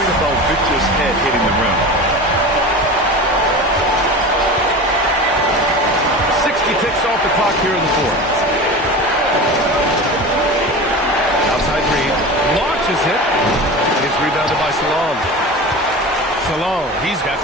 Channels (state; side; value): normal; both; correlation 0.31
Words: about Victor's head hitting the rim. 60 ticks off the clock here in the 4th. Outside Reed. Launches it. It's rebounded by Salon. Salon, he's got